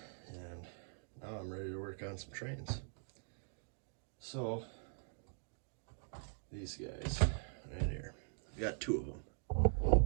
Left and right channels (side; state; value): left; silent; digital silence